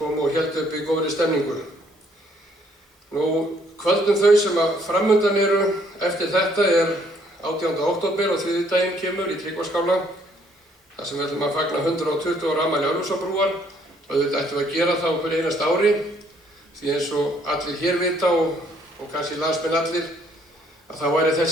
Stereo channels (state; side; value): normal; both; correlation 0.66